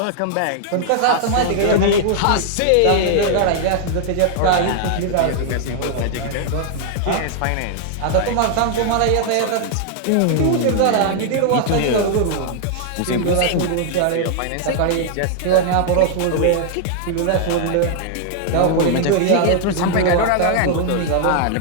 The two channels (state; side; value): different; both; correlation 0.00